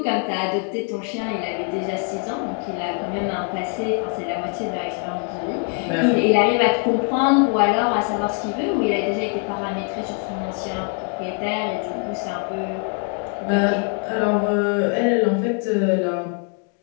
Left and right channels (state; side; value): quieter; right; 39.1 dB